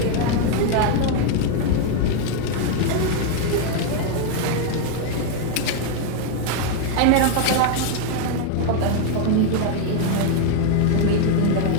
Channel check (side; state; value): both; different; correlation 0.00